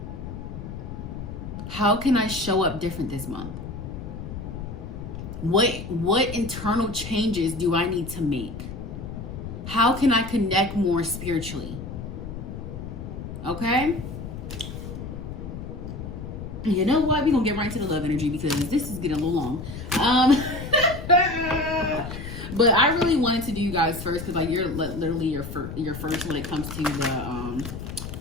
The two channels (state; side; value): noise; left; rumble, 8 dB below the sound